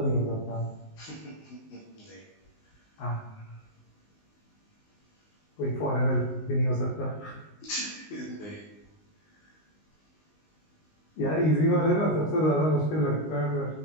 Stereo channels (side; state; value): right; late; 19 ms